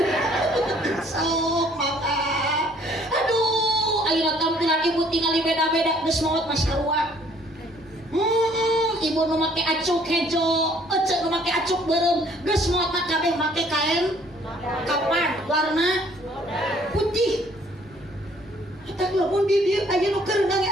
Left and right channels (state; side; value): normal; both; correlation 0.60